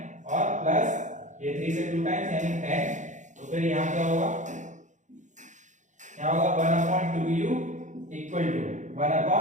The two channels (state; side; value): late; left; 0.35 ms